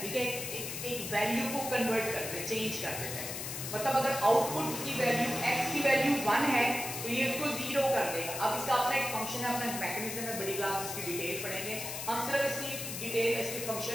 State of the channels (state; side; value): noise; left; hiss, 6 dB below the sound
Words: है, एक वैल्यू को कन्वर्ट करते हैं, चेंज कर देते हैं। मतलब अगर आउटपुट की वैल्यू x की वैल्यू 1 है तो ये इसको 0 कर देगा। अब इसका अपना एक फंक्शन है, अपना मैकेनिज्म है, बड़ी क्लास में इसकी डिटेल पढ़ेंगे हम। सिर्फ इसकी डिटेल, इसके